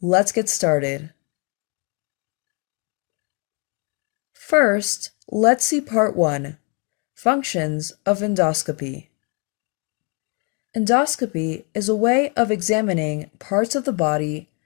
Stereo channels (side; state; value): right; quieter; 32.7 dB